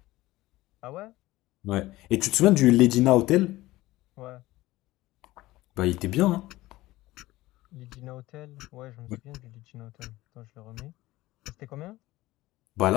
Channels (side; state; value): right; quieter; 17.9 dB